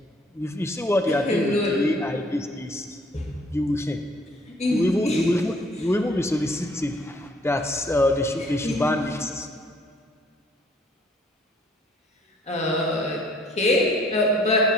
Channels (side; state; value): both; normal; correlation 0.60